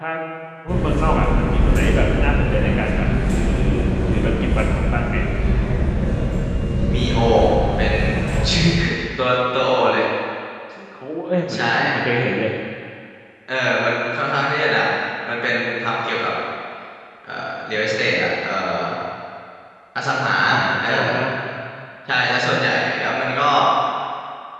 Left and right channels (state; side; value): identical; both; correlation 1.00